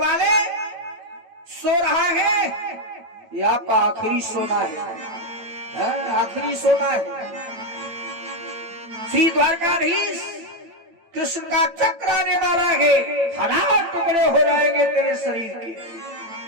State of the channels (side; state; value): left; late; 8.9 ms